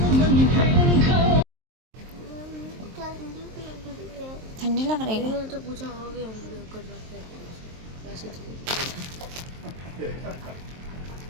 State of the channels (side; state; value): left; late; 23 ms